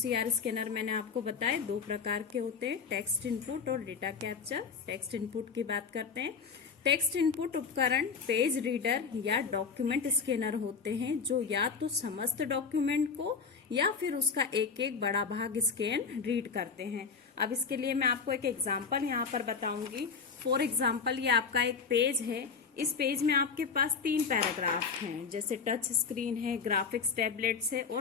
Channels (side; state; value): right; quieter; 5.6 dB